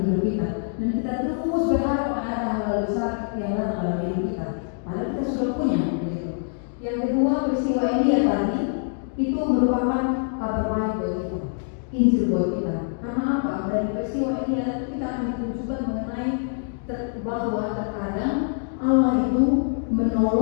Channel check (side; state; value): right; silent; digital silence